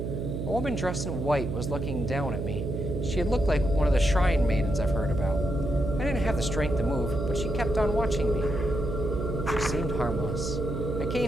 A woman dressed in white was looking down at me. She had looked like one of the shrine maidens I've heard about. I didn't have the strength to move, but she kept on watching me. She seemed harmless. I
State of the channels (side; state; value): right; noise; hum, 3 dB below the sound